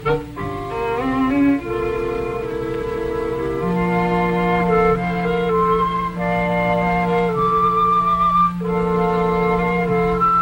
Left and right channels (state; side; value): identical; both; correlation 1.00